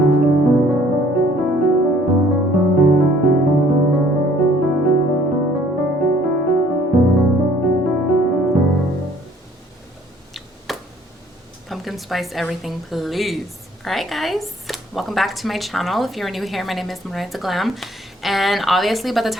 spice everything, please. All right, guys, welcome back to my channel. If you're new here, my name is Glam, and obviously by the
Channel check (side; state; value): both; normal; correlation 0.58